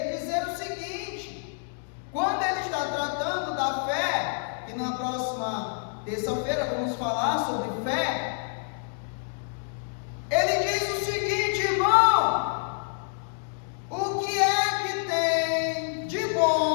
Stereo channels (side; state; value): right; silent; digital silence